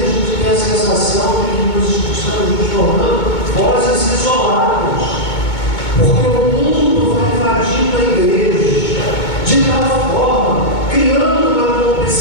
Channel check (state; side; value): late; right; 2.2 ms